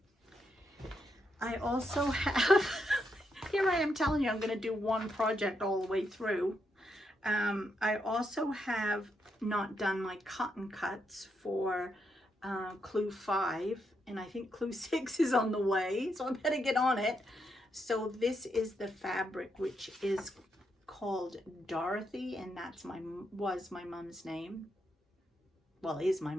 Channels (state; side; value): normal; both; correlation 0.80